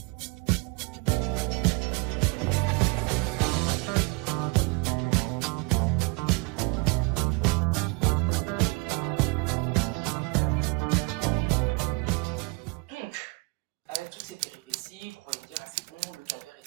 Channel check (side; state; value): left; quieter; 28.8 dB